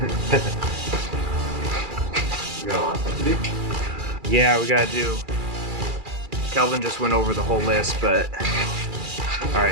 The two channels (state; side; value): late; left; 2.4 ms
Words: You got a lot of stuff to do? Yeah, we gotta do. Kelvin just went over the whole list, but all